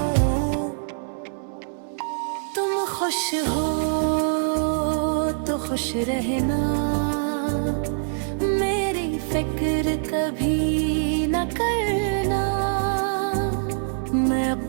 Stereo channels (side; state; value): left; silent; 62 dB below the other